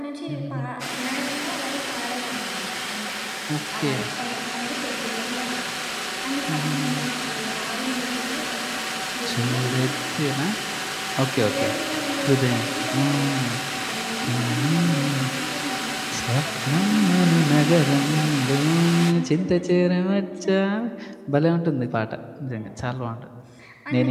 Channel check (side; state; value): both; identical; correlation 1.00